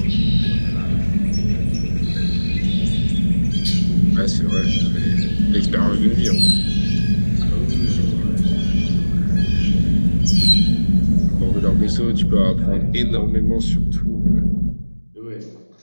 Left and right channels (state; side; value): inverted; both; correlation -1.00